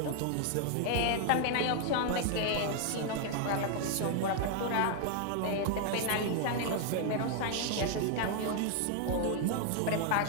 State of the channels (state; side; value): different; both; correlation 0.00